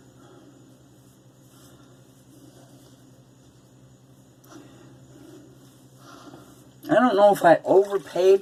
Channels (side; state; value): both; identical; correlation 1.00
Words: I don't know if I